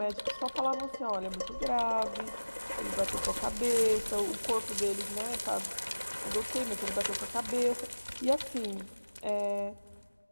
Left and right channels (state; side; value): inverted; both; correlation -1.00